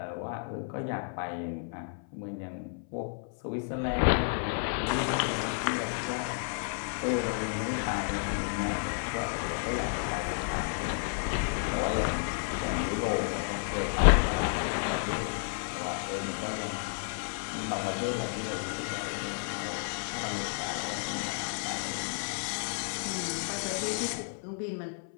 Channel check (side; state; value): right; silent; 57 dB below the other